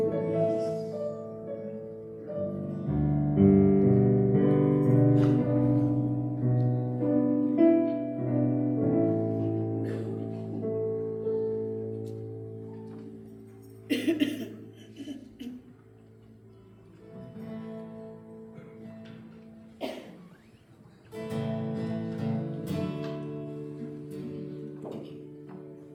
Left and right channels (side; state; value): both; identical; correlation 1.00